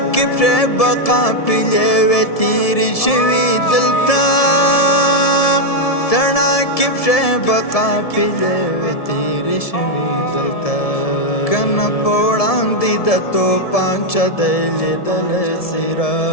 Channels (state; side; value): late; right; 1.7 ms